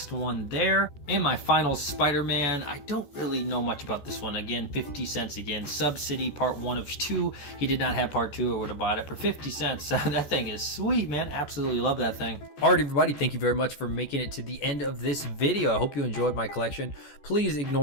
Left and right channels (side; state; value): right; late; 14 ms